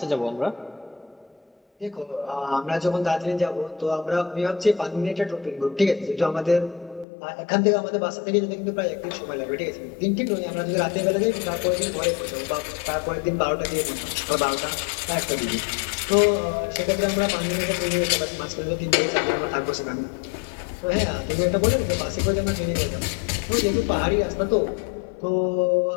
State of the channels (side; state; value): right; drops out; at 7.1 s